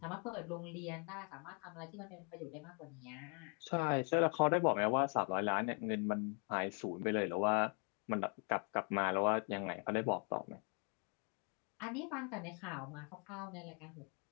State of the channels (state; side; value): quieter; right; 38.6 dB